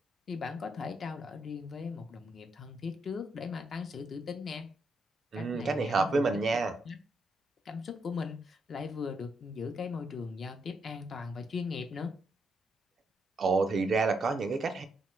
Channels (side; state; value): both; normal; correlation 0.79